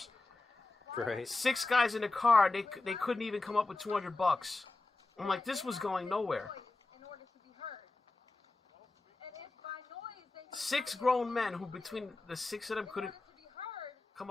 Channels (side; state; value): right; quieter; 3.3 dB